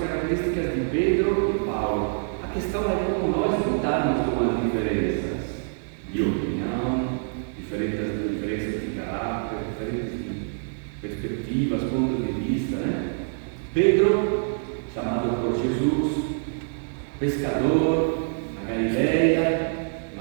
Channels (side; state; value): left; silent; 61 dB below the other